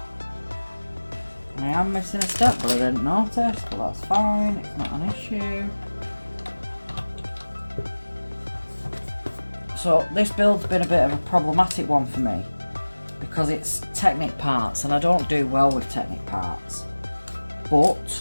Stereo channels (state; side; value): inverted; both; correlation -1.00